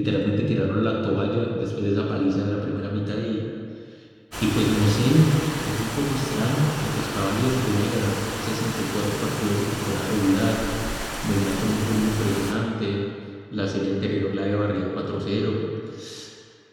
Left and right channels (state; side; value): identical; both; correlation 1.00